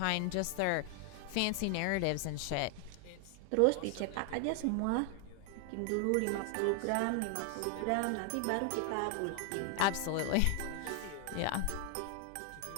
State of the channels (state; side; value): different; both; correlation 0.00